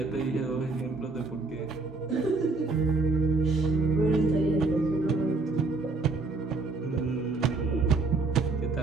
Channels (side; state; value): left; quieter; 3.7 dB